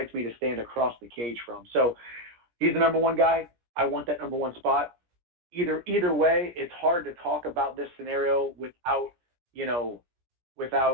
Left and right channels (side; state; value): left; late; 17 ms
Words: me to stand across the cage from. So he's the number one guy. I want that number one spot. Either way, it's hard to talk about this scenario